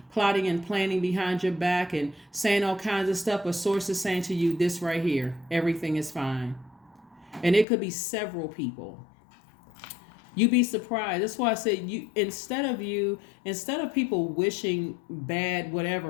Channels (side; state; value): right; drops out; at 7.7 s